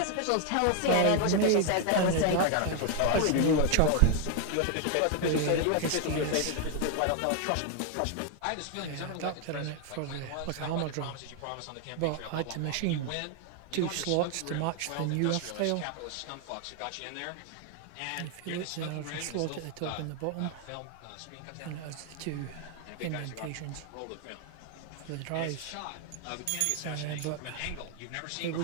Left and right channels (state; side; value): different; both; correlation 0.01